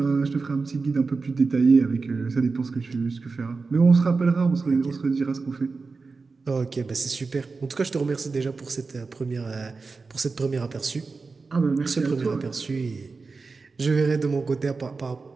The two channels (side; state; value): left; quieter; 4.2 dB